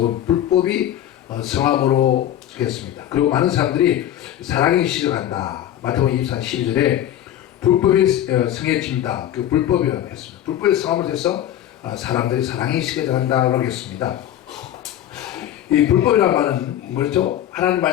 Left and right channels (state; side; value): quieter; right; 11.7 dB